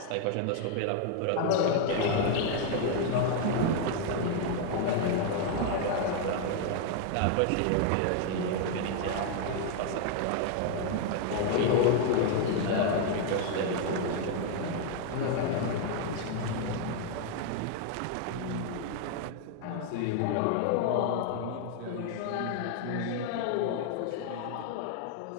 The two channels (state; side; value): different; both; correlation 0.00